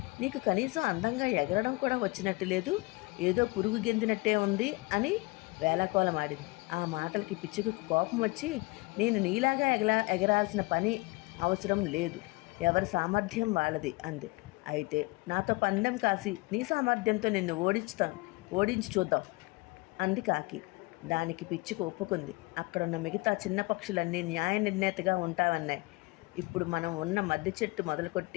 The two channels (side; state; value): right; quieter; 25.5 dB